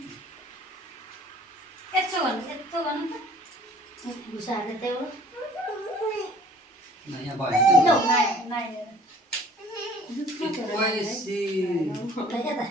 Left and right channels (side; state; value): both; normal; correlation 0.53